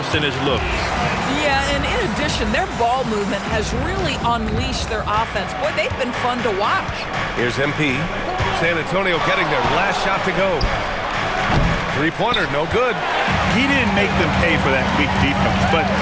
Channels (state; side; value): identical; both; correlation 1.00